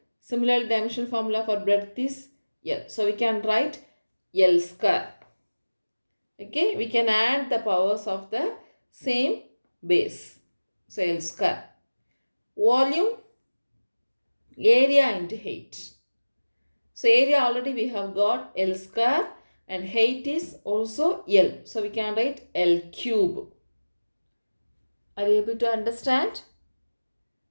Similarly, dimensional formula for breadth is L. So we can write L square. Okay, we can add the powers of the same base. So L square. Volume, area into height. So area already we have got L square and height is also L. So we can write L cube. Are you able to understand?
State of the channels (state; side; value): inverted; both; correlation -1.00